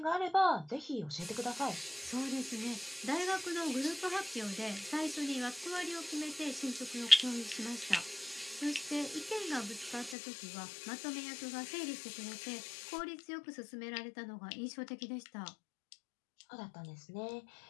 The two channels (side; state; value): right; drops out; at 10.2 s